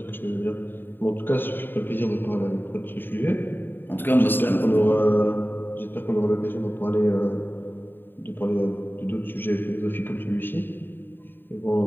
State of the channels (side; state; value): right; late; 0.095 ms